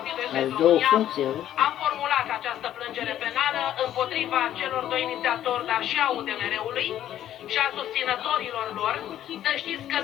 Ai SOS două România, funcții, am formulat această plângere penală împotriva celor doi inițiatori, dar și a UDMR-ului și a susținătorilor lor. Să știți că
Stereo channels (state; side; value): quieter; right; 11.6 dB